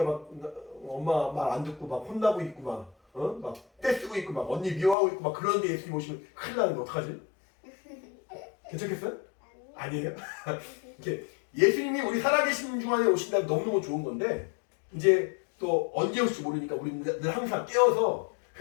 막 엄마 말 안 듣고 막 혼나고 있고 막 떼쓰고 있고 막 언니 미워하고 있고 막 그런데 예수님 오시면 큰일 나는데 어떡하지? 괜찮겠어요? 아니에요? 이렇게 예수님이 우리 살아계신 중간에 오신다면 너무너무 좋은 건데 이제 또 언제 올지 모르니까 우리는 늘 항상 깨어서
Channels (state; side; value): drops out; right; at 5.0 s